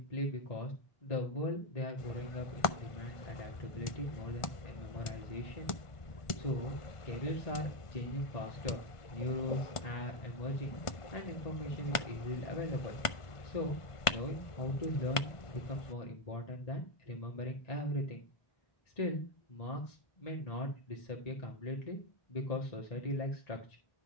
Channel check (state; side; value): late; right; 1.4 ms